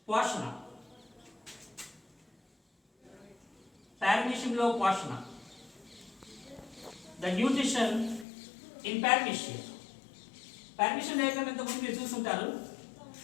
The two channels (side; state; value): right; drops out; at 8.2 s